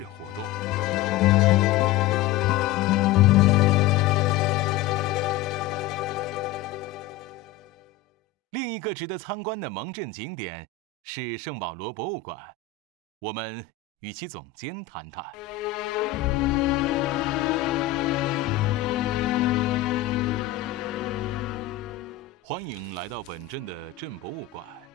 活动。另一个值得参观的蒙镇景点是圣保罗博物馆，我们与其总监谈谈。欢迎来到本镇的镇博物馆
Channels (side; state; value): right; quieter; 11.4 dB